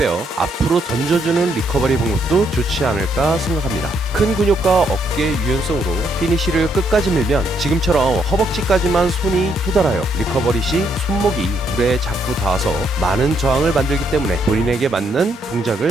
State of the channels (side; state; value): both; normal; correlation 0.73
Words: 앞으로 던져주는 리커버리 방법도 좋지 않을까 생각합니다. 큰 근육과 어깨 유연성으로 피니시를 끝까지 밀면 지금처럼 허벅지까지만 손이 도달하여 리커버리 시 손목이 물에 자꾸 닿아서 많은 저항을 만들기 때문에 본인에게 맞는